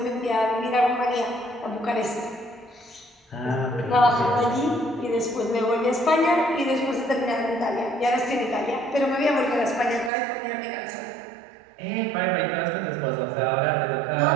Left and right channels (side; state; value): left; drops out; at 10.1 s